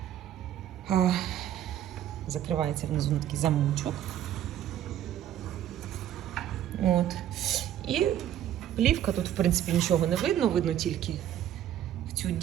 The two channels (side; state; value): left; quieter; 11.2 dB